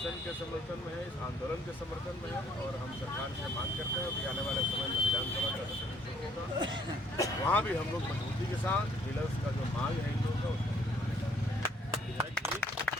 के समर्थन में है, इस आंदोलन के समर्थन में है, और हम सरकार से मांग करते हैं कि आने वाले समय में विधानसभा का सत्र होगा, वहाँ भी हम लोग मजबूती के साथ डीलर्स का जो मांग है इन लोगों का उसका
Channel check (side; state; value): both; normal; correlation 0.63